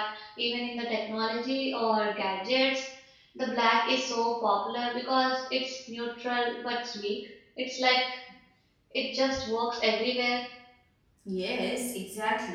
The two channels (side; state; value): both; identical; correlation 1.00